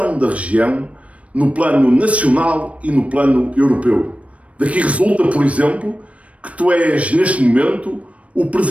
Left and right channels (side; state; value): left; late; 0.064 ms